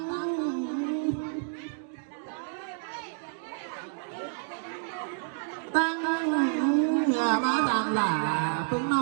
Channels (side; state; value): left; silent; digital silence